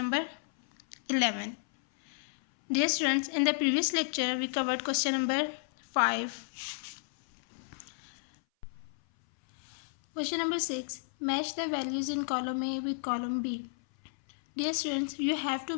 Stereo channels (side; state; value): right; silent; 56 dB below the other